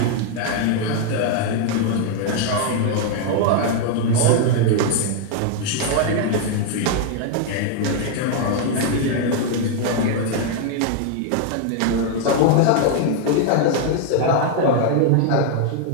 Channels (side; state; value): both; different; correlation 0.00